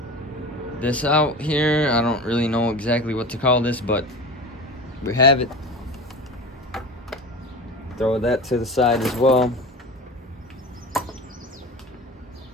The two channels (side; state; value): both; normal; correlation 0.31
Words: this out here. I don't really know exactly what to call this, but we have it. Throw that to the side as well.